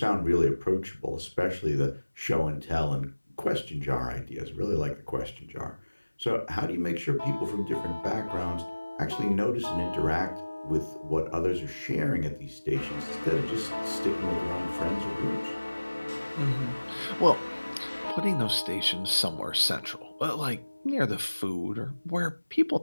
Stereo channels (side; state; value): both; inverted; correlation -1.00